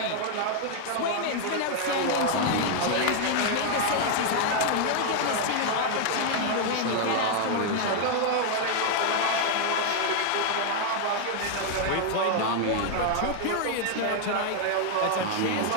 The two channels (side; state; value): both; different; correlation 0.00